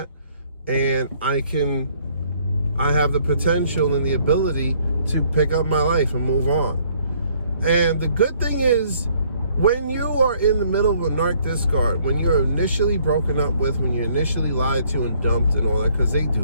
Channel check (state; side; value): inverted; both; correlation -0.63